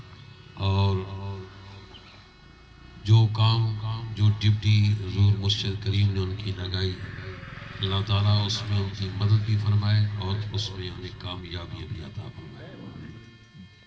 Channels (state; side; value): identical; both; correlation 1.00